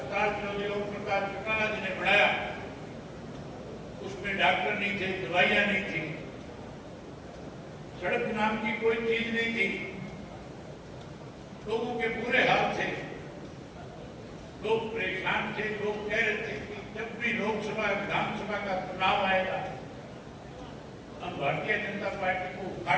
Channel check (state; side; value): identical; both; correlation 1.00